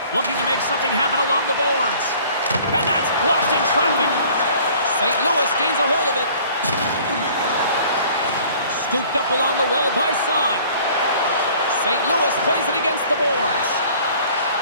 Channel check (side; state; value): both; inverted; correlation -0.52